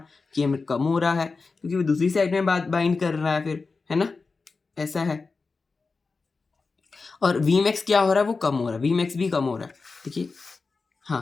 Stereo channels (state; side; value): quieter; right; 4.2 dB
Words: Km कम हो रहा है, क्योंकि वो दूसरी साइड में बाइंड कर रहा है फिर, है ना, ऐसा है। और Vmax क्या हो रहा है, वो कम हो रहा है, Vmax भी कम हो रहा है, देखिए।